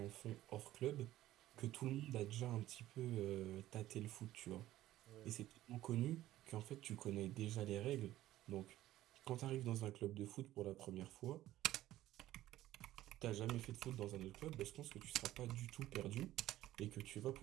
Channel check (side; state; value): left; quieter; 14.6 dB